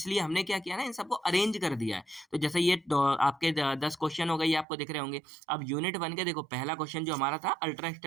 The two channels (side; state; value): left; drops out; at 4.7 s